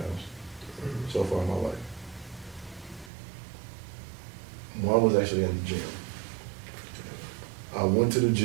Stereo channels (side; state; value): left; drops out; at 3.1 s